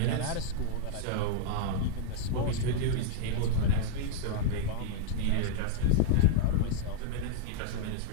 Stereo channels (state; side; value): different; both; correlation -0.01